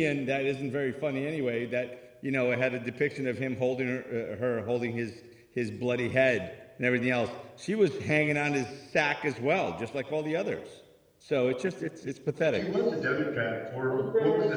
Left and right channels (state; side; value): identical; both; correlation 1.00